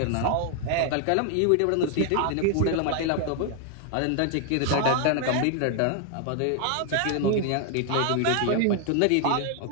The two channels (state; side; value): different; both; correlation 0.00